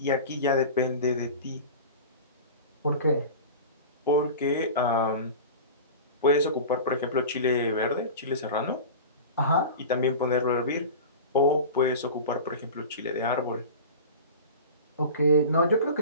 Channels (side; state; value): both; inverted; correlation -0.33